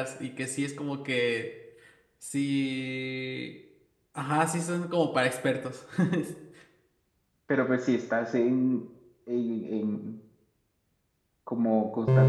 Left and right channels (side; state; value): both; identical; correlation 1.00